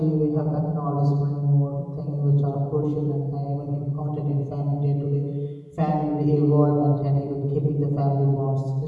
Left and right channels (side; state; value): both; identical; correlation 1.00